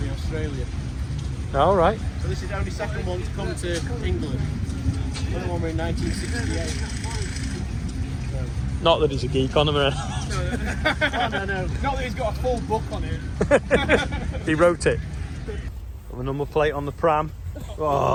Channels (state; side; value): identical; both; correlation 1.00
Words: in Australia. All right. So this is the only second one to come to England. The other one were in 1968. Not that he's a geek on them or anything. No. Not that he's got a full book on it. He wrote it. Got the number plate on the pram.